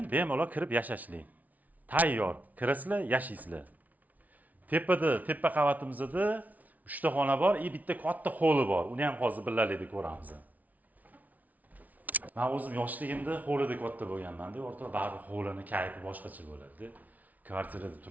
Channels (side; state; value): left; late; 0.074 ms